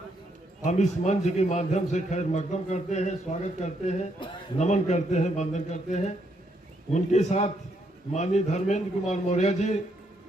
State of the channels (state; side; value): normal; both; correlation 0.75